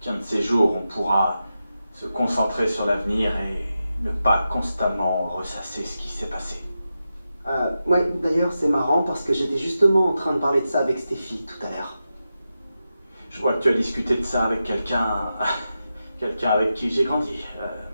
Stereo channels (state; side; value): inverted; both; correlation -0.90